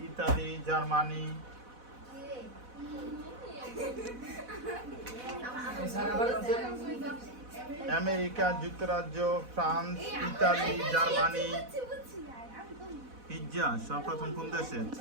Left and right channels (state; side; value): late; left; 4.1 ms